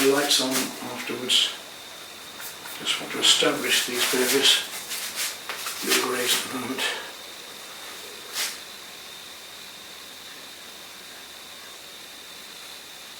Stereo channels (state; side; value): identical; both; correlation 1.00